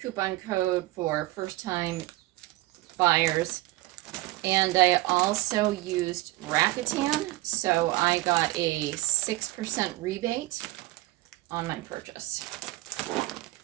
coupon code for first time buyers. And I also used Rakuten, so I got a 6% rebate on my purchase.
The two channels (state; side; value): quieter; left; 19.1 dB